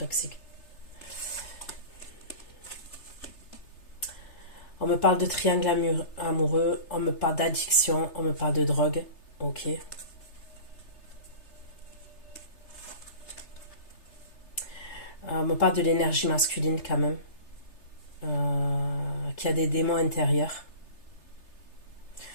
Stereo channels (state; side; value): late; right; 3.3 ms